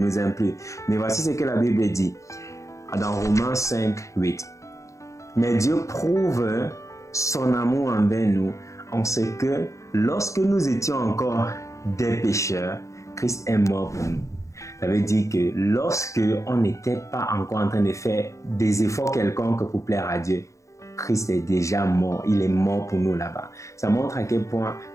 aime plus. Mais voici ce que la Bible dit dans Romains 5, 8. Mais Dieu prouve son amour envers nous en ce que lorsque nous étions encore des pécheurs, Christ est mort pour nous. Ça veut dire que lorsque on n'était pas encore en train de faire des efforts quelconques pour plaire à Dieu, Christ est déjà mort. Il est mort pour nous là-bas. Ça montre à quel point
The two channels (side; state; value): right; late; 0.15 ms